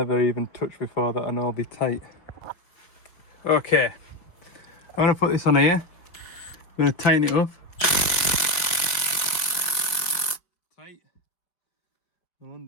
even touched before that I know will be tight. Okay, I'm going to put this on here. I'm going to tighten it up. Tight. I'll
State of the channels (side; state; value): right; late; 5.2 ms